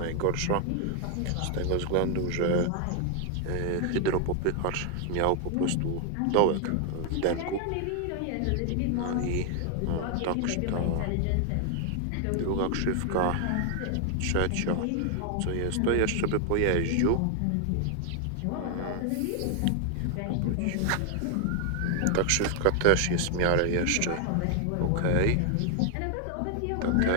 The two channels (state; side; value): different; both; correlation 0.00